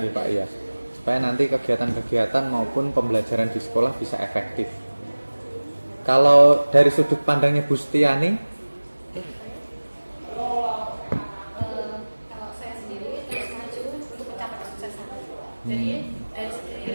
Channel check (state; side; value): inverted; both; correlation -1.00